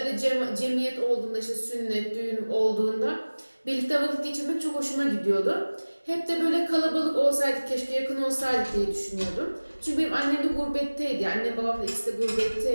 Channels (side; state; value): both; inverted; correlation -1.00